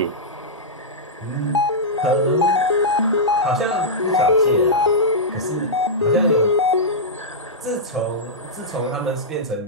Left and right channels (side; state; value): both; normal; correlation -0.11